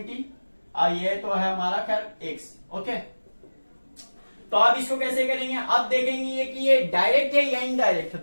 ये तो है हमारा खैर एक्स। ओके, तो अब इसको कैसे करेंगे? अब देखेंगे कि ये डायरेक्ट है या इनडायरेक्ट है।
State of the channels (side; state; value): both; inverted; correlation -1.00